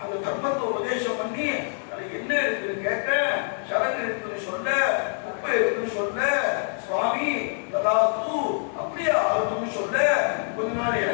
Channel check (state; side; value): silent; right; 60 dB below the other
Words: அந்த தர்மத்தை உபதேசம் பண்ணி அது என்ன இருக்குன்னு கேட்க, சரகு இருக்குன்னு சொல்ல, குப்பை இருக்குன்னு சொல்ல, சுவாமி ததாஸ்து அப்படியே ஆகுதுன்னு சொல்ல, கொஞ்ச நாள்